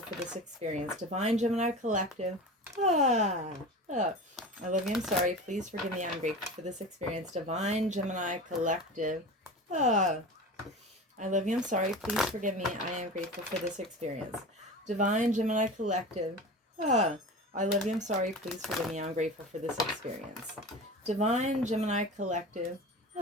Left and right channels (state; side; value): normal; both; correlation 0.32